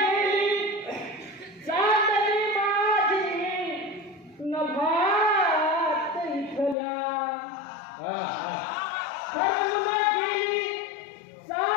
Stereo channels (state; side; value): drops out; right; at 6.8 s